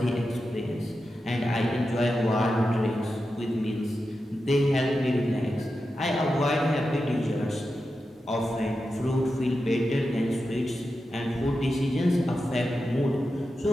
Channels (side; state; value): both; normal; correlation 0.90